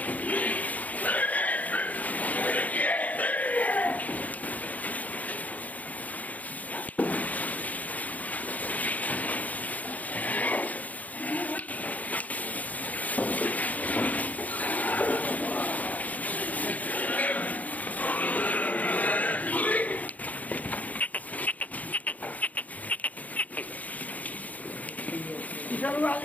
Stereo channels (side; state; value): right; late; 0.076 ms